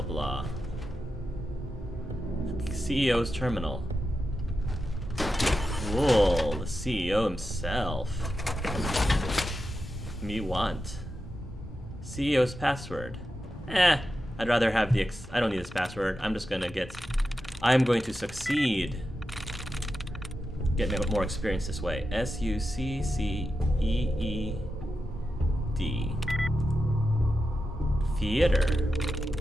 blah. CEO's terminal. Whoa, the CEO himself. Me want. CEO's password. I'd rather have the I don't need this password. I'm just gonna get... I'm going to succeed. Get more experience this way. SUCCEED. Theater.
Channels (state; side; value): normal; both; correlation 0.90